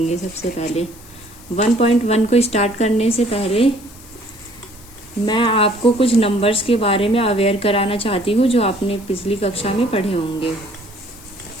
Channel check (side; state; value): left; noise; hiss, 21 dB below the sound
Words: सबसे पहले 1.1 को स्टार्ट करने से पहले मैं आपको कुछ नंबर्स के बारे में अवेयर कराना चाहती हूँ जो आपने पिछली कक्षा में पढ़े होंगे।